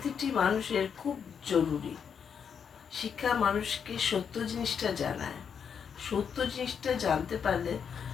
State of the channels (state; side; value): quieter; right; 7.1 dB